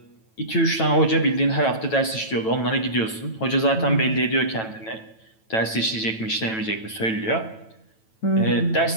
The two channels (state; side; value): late; right; 9.1 ms